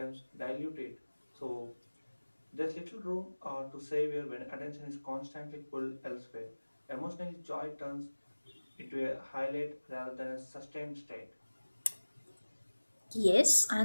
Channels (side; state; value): both; inverted; correlation -1.00